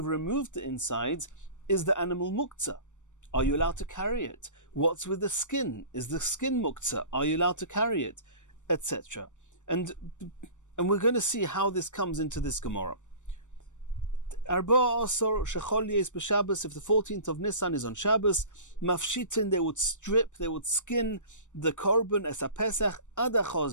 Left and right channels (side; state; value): right; late; 0.85 ms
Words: removed the insides, is the animal muktzah? Are you allowed to carry it? What's with the skin? Is the skin muktzah? Are you allowed to carry it? Etc. And we're going to see how this comes into this Gemara. Arba Asor Shechol Yes b'Shabbos, if the 14th of Nisan is on Shabbos, Mafshitin, they would strip, they would skin the korban as a Pesach ad